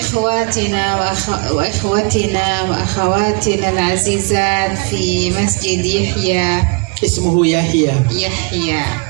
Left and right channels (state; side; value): quieter; left; 32.6 dB